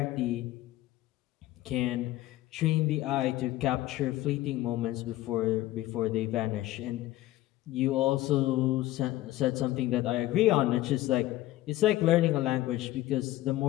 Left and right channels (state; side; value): quieter; right; 15.8 dB